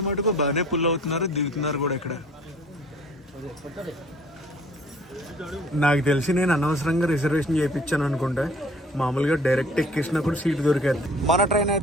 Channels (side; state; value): both; normal; correlation 0.53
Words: మటుకు బాగానే పుల్ అవుతున్నారు, దిగుతున్నారు కూడా ఇక్కడ. నాకు తెలిసి నేను అనవసరంగా రిజర్వేషన్ చేయించాను అనుకుంటా. మామూలుగా డైరెక్ట్ ఎక్కేసినా కూడా సీట్ దొరికేది. మన ట్రైన్